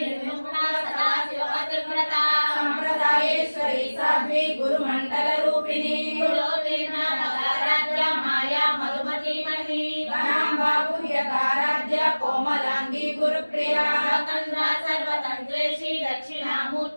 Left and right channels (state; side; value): inverted; both; correlation -1.00